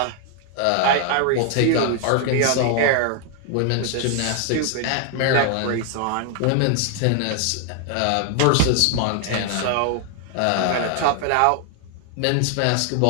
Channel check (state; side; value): different; both; correlation 0.00